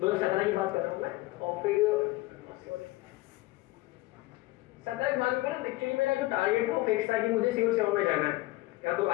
की बात कर रहा हूँ मैं। और फिर 17 के बाद में ना एक्चुअली मेरा जो टारगेट था वो फिक्स था कि मुझे सिविल सेवा में जाना है, या तो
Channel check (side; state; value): right; quieter; 19.5 dB